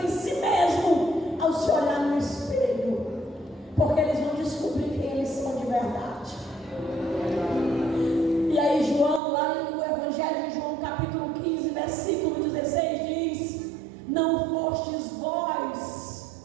em si mesmo ao se olhar no espelho, porque eles vão descobrir quem eles são de verdade. E aí João, lá no Evangelho de João, capítulo 15, versículo 16, diz, não fostes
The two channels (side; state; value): left; drops out; at 9.2 s